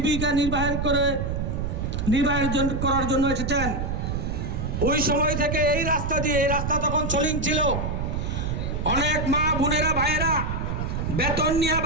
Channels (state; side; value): noise; right; rumble, 2 dB below the sound